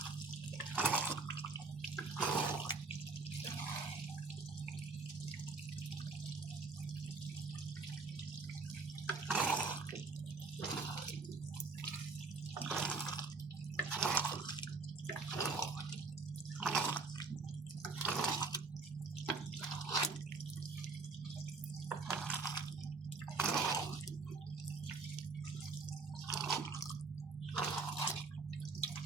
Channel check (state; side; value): quieter; left; 4.1 dB